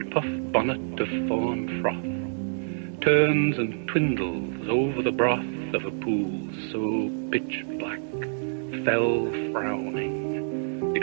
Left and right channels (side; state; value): left; silent; digital silence